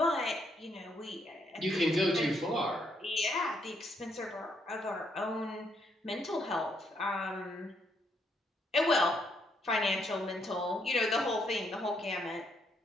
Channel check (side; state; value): both; normal; correlation 0.74